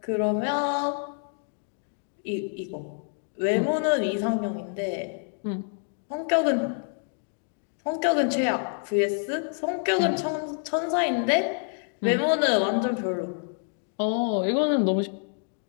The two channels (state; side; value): silent; right; 60 dB below the other